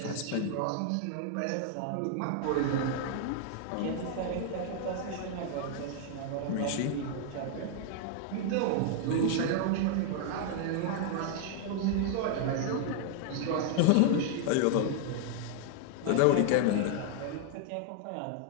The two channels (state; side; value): different; both; correlation 0.00